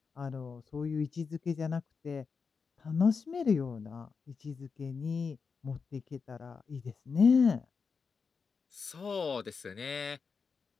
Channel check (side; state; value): right; quieter; 5.4 dB